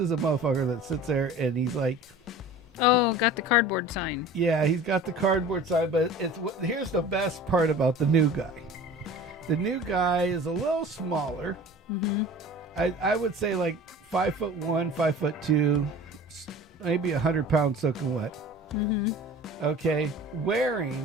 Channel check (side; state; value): both; normal; correlation 0.41